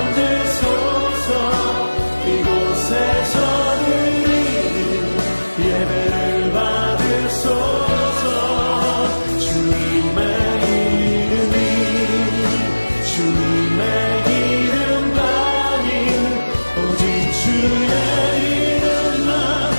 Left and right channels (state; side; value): inverted; both; correlation -1.00